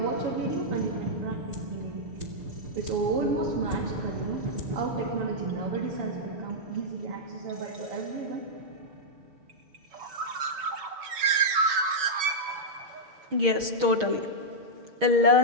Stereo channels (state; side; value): late; left; 7.1 ms